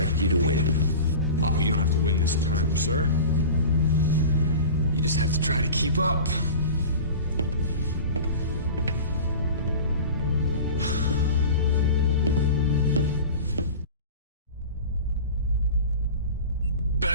you to win. Oh, you don't have to win this time, sir. You just have to try to keep up.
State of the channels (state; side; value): inverted; both; correlation -0.34